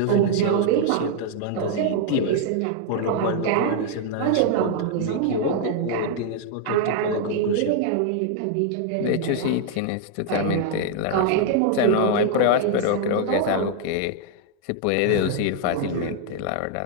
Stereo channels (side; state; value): both; different; correlation 0.00